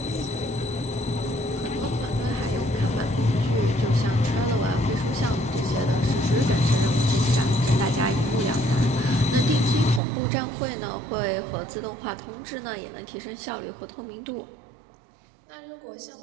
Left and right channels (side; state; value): left; drops out; at 10.0 s